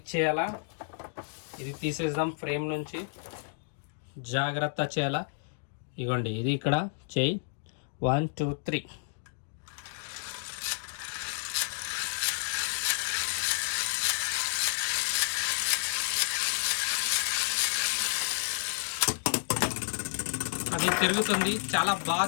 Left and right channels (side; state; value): right; silent; digital silence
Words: చేయాలా, ఇది తీసేద్దాం ఫ్రేమ్ నుంచి, జాగ్రత్త చేయాలా. ఇగోండి ఇది ఇక్కడ చెయ్యి, 1 2 3. అది తిరుగుతుంది, చాలా బాగా